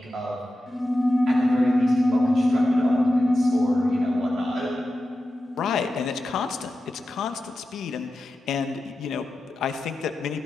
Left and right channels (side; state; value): both; normal; correlation 0.92